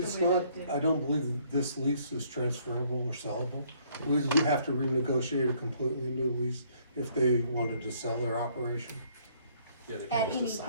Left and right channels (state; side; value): inverted; both; correlation -0.65